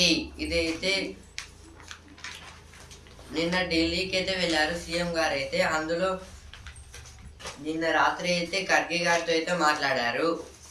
ఇదైతే నిన్న ఢిల్లీకి అయితే వెళ్ళారు సీఎం గారు అయితే. అందులో నిన్న రాత్రి అయితే ఖర్గే గారితో అయితే మాట్లాడారు.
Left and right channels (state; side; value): identical; both; correlation 1.00